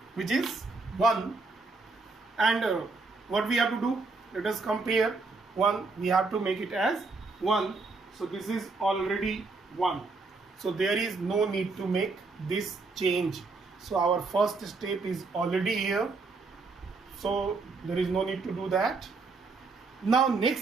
which is 1, and what we have to do? Let us compare 1. We have to make it as 1. So this is already 1. So there is no need to make this change. So our first step is already here. So there is no need to do that. Now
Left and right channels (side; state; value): left; quieter; 3.9 dB